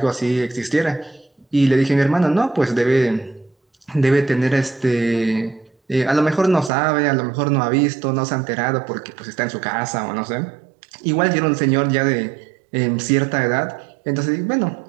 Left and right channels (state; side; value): drops out; left; at 6.7 s